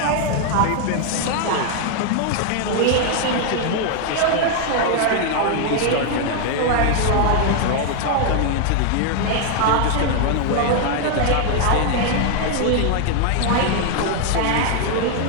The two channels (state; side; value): different; both; correlation 0.00